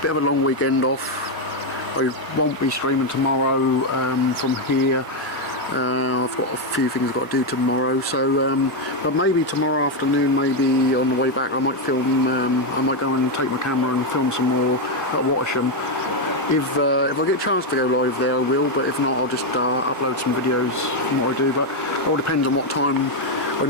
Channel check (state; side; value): normal; both; correlation 0.04